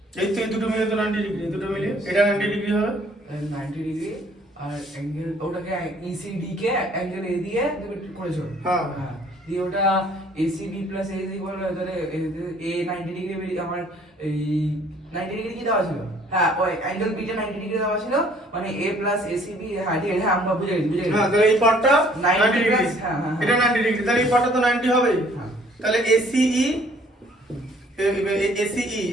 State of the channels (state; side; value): normal; both; correlation 0.58